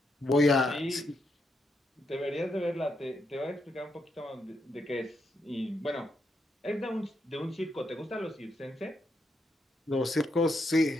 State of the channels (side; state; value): both; normal; correlation 0.80